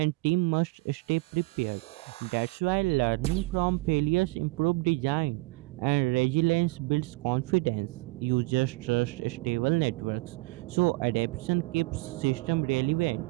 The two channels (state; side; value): quieter; left; 23.2 dB